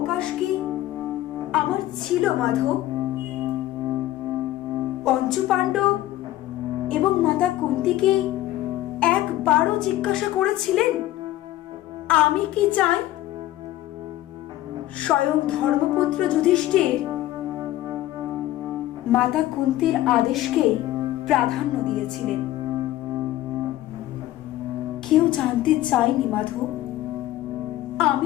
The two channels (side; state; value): right; quieter; 14.8 dB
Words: কি আমার ছিল মাধব? পঞ্চপাণ্ডব এবং মাতা কুন্তিকে একবারও জিজ্ঞাসা করেছিলেন আমি কি চাই? স্বয়ং ধর্মপুত্র যুধিষ্ঠির মাতা কুন্তির আদেশকে প্রাধান্য দিয়েছিলেন। কেউ জানতে চায়নি মাধব